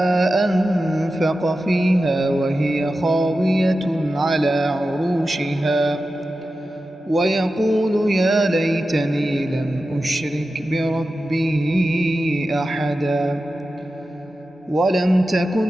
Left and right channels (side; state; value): both; normal; correlation 0.92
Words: أنفق فيها وهي خاوية على عروشها ويقول يا ليتني لم أشرك بربي أحدا ولم